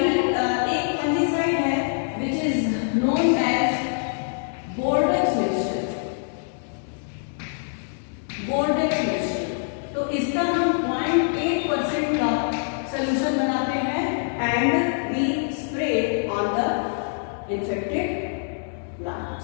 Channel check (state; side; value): silent; right; digital silence